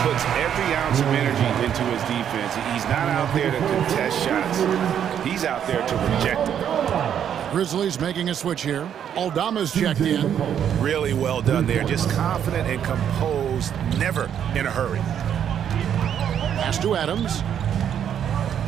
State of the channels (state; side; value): quieter; left; 9.1 dB